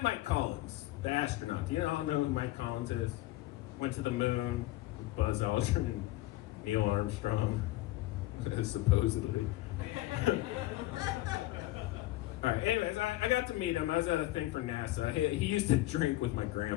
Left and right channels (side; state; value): right; quieter; 17.4 dB